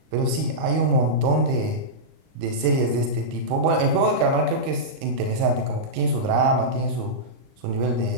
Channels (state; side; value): late; left; 38 ms